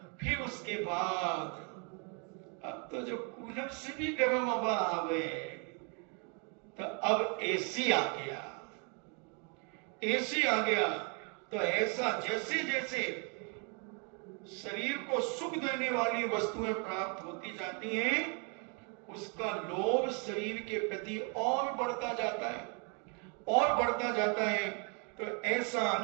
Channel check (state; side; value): quieter; left; 36.4 dB